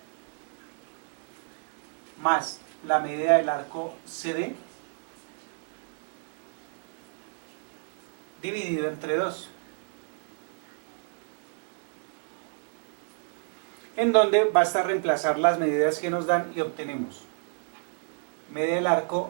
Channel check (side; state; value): left; silent; 58 dB below the other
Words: más la medida del arco CD dividido entre 2. En donde basta reemplazar las medidas que nos dan y obtenemos medida del arco